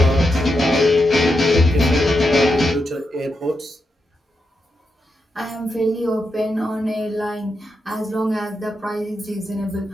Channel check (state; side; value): normal; both; correlation 0.85